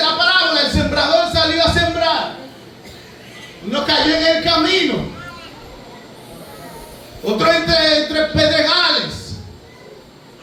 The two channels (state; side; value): identical; both; correlation 1.00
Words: la parábola, el sembrador salió a sembrar. Uno cayó en el camino. Otro entre pedregales,